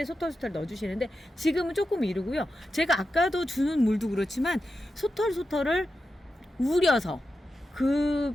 소털 넣어주시는데 지금은 조금 이르고요. 제가 아까도 주는 물도 그렇지만 소털을 우려서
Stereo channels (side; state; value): both; normal; correlation 0.90